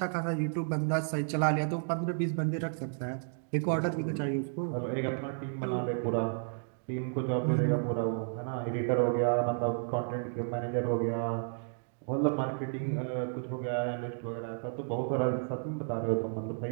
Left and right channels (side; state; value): left; silent; digital silence